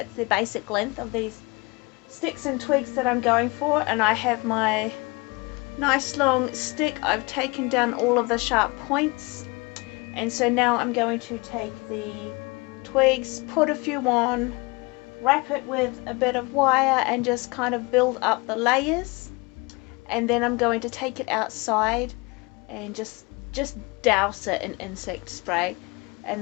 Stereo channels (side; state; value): right; quieter; 26.7 dB